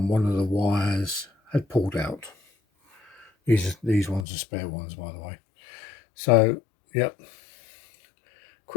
one of the wires had pulled out. These ones are spare ones, by the way. So yep,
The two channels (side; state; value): right; drops out; at 4.2 s